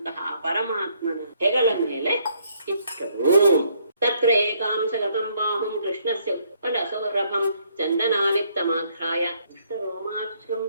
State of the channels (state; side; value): inverted; both; correlation -0.68